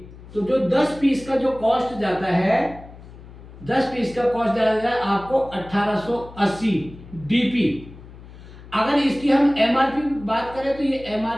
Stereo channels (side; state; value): left; noise; hum, 18 dB below the sound